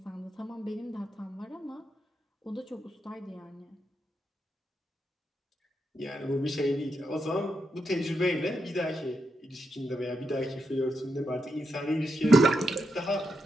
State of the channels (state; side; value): normal; both; correlation 0.84